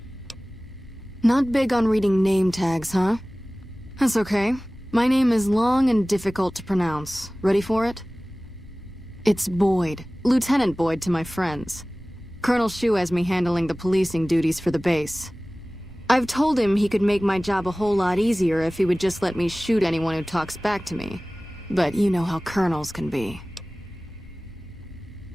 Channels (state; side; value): normal; both; correlation 0.98